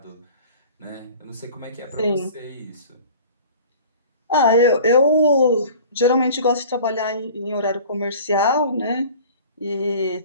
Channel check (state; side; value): inverted; both; correlation -0.43